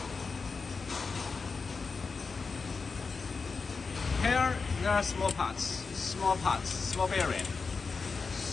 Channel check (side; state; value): right; quieter; 4.7 dB